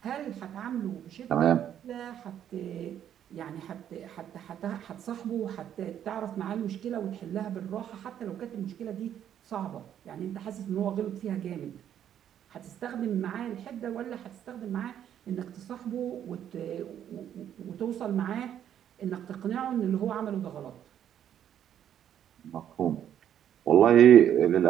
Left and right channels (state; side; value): quieter; left; 10.0 dB